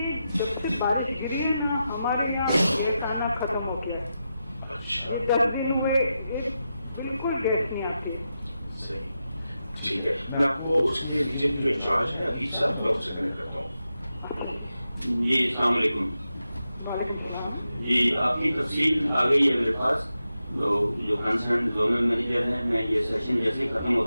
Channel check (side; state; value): both; inverted; correlation -0.89